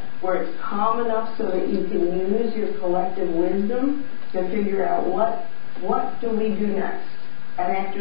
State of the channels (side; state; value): right; silent; 65 dB below the other